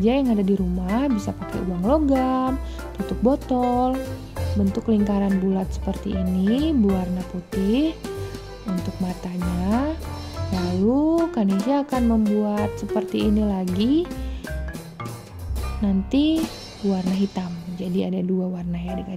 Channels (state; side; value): identical; both; correlation 1.00